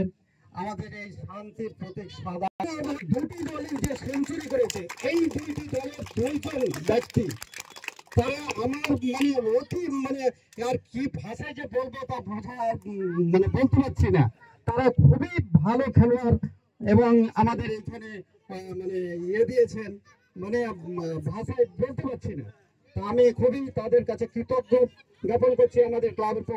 আমাদের এই শান্তির প্রতীক সাদা। দুটি দলের যে সেঞ্চুরি করেছে, এই দুইটি দলের দুইজন ব্যক্তি, তারা আমার অতি আর কি ভাষায় যে বলবো তা বোঝা বলতে পারছি না। তারা খুবই ভালো খেলোয়াড় এবং আমাদের এখানে দিয়েছেন, ভাষায় বলতে পারছি না। তা আমি খুবই তাদের কাছে কৃতজ্ঞ জ্ঞাপন করছি। আমাদের ক্লাবের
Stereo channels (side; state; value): both; identical; correlation 1.00